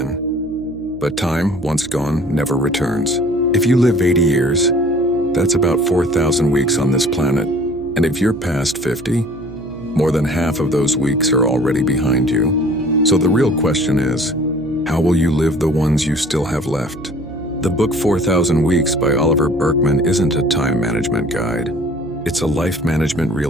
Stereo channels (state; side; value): noise; right; hum, 17 dB below the sound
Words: But time, once gone, never returns. If you live 80 years, that's about 4,000 weeks on this planet. And if you're past 50, more than half of those weeks are already behind you. So the real question is, how will you live the ones you still have left? The book 4,000 Weeks by Oliver Burkeman isn't a time management guide. It's a life management